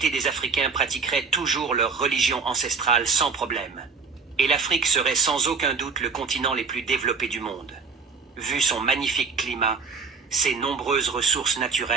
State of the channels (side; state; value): left; quieter; 5.1 dB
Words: des Africains pratiqueraient toujours leur religion ancestrale sans problème. Et l'Afrique serait sans aucun doute le continent les plus développés du monde. Vu son magnifique climat, ses nombreuses ressources